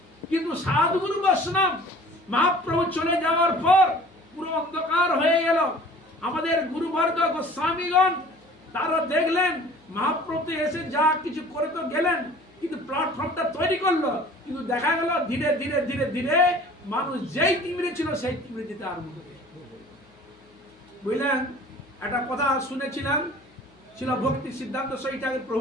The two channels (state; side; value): noise; left; hum, 29 dB below the sound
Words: কিন্তু সাধুগুরু বৈষ্ণব মহাপ্রভু চলে যাওয়ার পর পুরো অন্ধকার হয়ে গেল। আমাদের গুরুবর্গ গোস্বামীগণ তারা দেখলেন মহাপ্রভু এসে যা কিছু করে তো গেলেন, কিন্তু প্ল্যাটফর্মটা তৈরি করলো, কিন্তু দেখা গেল ধীরে ধীরে ধীরে ধীরে মানুষ যেই তিমিরে ছিল সেই তিমিরে যেতে আরম্ভ করে। বুঝলেন? একটা কথা শুনেছিলাম, ছিল ভক্তি সিদ্ধান্ত সহিত